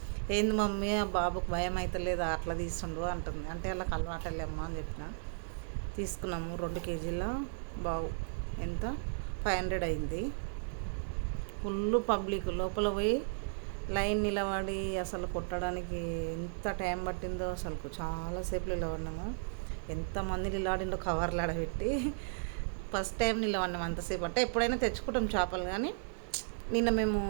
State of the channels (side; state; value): left; silent; digital silence